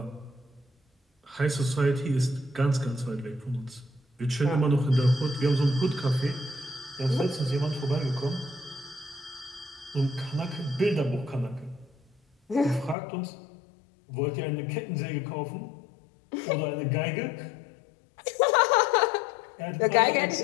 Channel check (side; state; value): right; drops out; at 13.0 s